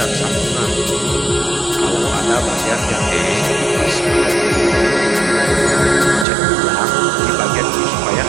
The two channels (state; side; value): drops out; left; at 6.2 s